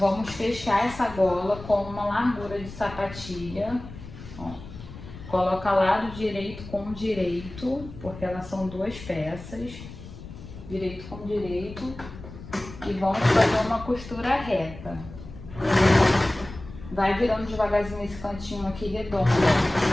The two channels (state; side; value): noise; left; rumble, 14 dB below the sound